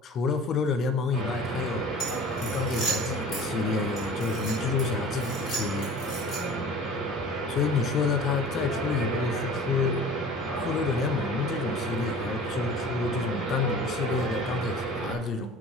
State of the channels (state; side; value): normal; both; correlation 0.42